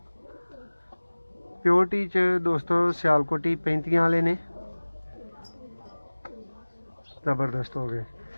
प्योरिटी च दोस्तों सियालकोटी 35 वाले ने जबरदस्त हो गए।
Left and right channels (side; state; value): both; inverted; correlation -1.00